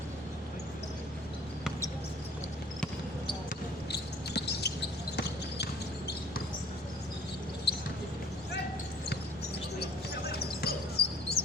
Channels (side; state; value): left; noise; hum, 25 dB below the sound